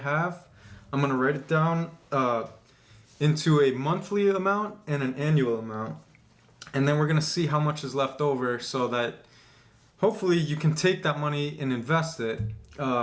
have. I'm gonna write it down into a monthly amount and an annual amount, and then we're gonna see how much is left over so that hopefully you can take that money and invest it.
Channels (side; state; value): both; identical; correlation 1.00